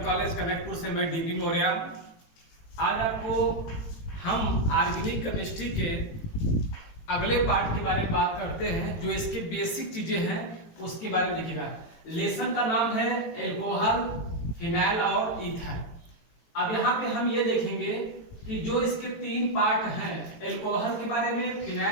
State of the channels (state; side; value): late; right; 18 ms